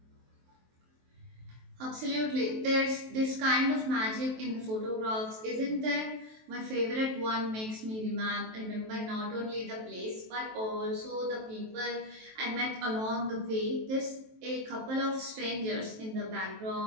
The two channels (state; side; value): late; left; 23 ms